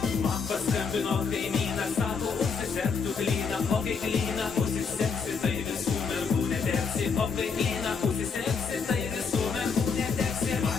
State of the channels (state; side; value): quieter; right; 5.4 dB